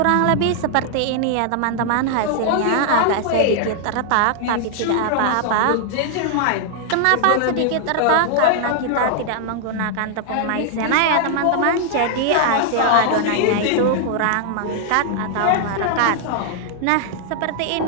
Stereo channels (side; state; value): both; different; correlation 0.00